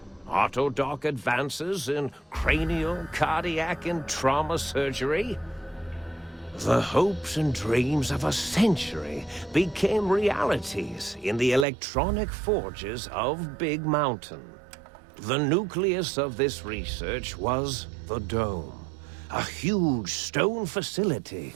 autodoc advances in cranial, cardiac, and trauma surgery. The hopes and dreams of a century became realities in the electronic forges of Big Mountain. The nucleus of this research was the Dome, a huge stone facility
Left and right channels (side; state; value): left; drops out; at 11.7 s